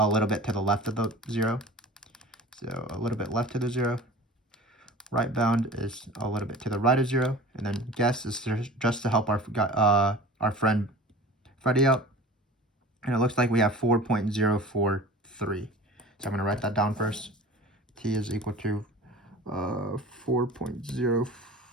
little bit to the left of the 0. So a little bit left to the 0. Right bound is a little bit to the right of 0. And then guess is just to help our friend Freddy out. And it looks like we have 4.043. So I'm going to write that down first. T is equal to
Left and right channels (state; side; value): normal; both; correlation 0.40